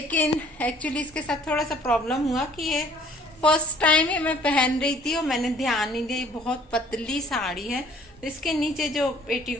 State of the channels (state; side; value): normal; both; correlation 0.56